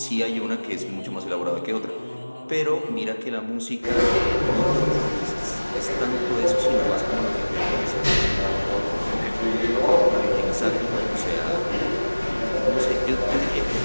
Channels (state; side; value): inverted; both; correlation -1.00